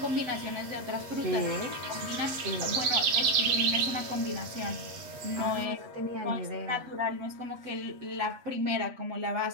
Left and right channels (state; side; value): late; left; 8.1 ms